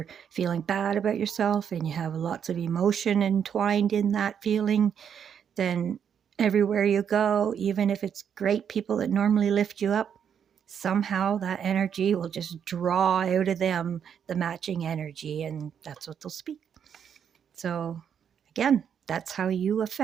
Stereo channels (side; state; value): left; quieter; 8.0 dB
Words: feeling bad about yourself and you have lots of emotion entwined in that feeling, then everywhere you go, even if it's great people that normally lift you up, somehow that energy will just draw out of them the matching energy, and that's what they'll speak. So again, that's how you